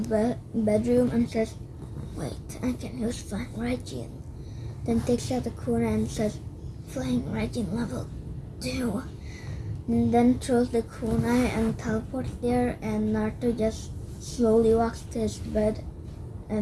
bedroom and says, wait, I can use Flying Raijin. Then takes out the kunai and says, Flying Raijin level 2. And then throws the kunai and teleports there, and Naruto just slowly walks to his bed,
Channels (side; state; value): both; identical; correlation 1.00